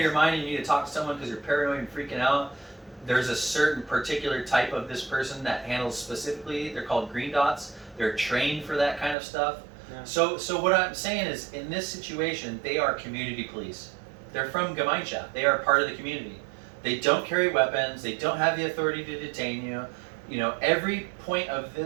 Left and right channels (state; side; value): drops out; left; at 9.2 s